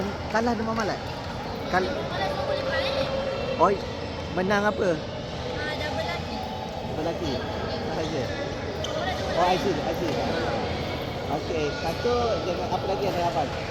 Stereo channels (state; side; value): identical; both; correlation 1.00